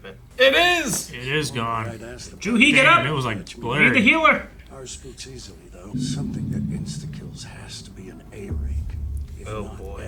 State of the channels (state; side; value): identical; both; correlation 1.00